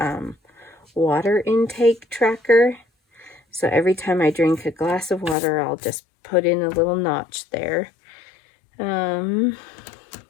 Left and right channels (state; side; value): drops out; right; at 5.4 s